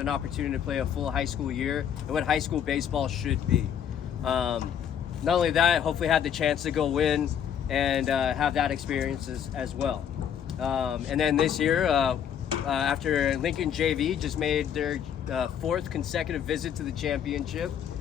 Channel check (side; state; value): right; quieter; 8.8 dB